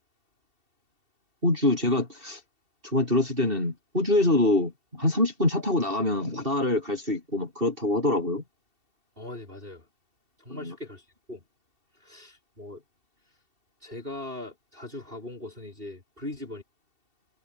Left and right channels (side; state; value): left; late; 2.7 ms